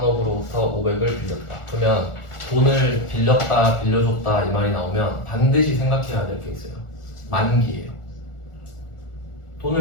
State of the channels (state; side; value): late; right; 1.4 ms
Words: 500을 빌렸다. 그러면 돈을 빌렸다, 빌려줬다 이 말이 나오면 반드시 생각해야 될 게 있어요. 만기예요.